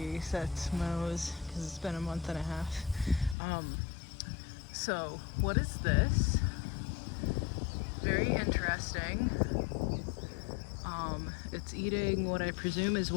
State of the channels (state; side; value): drops out; right; at 3.4 s